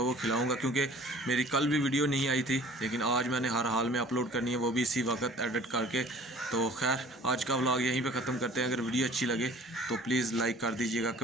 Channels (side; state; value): both; normal; correlation 0.49